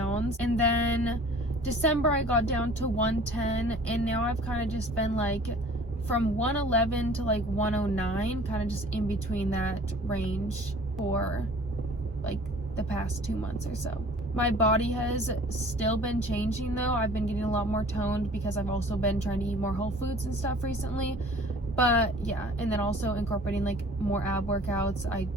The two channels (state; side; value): normal; both; correlation 0.48